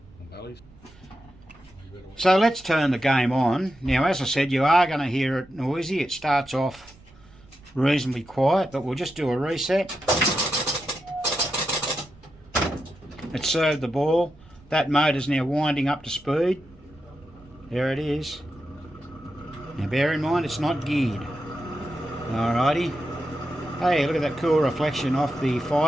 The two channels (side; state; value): right; noise; rumble, 25 dB below the sound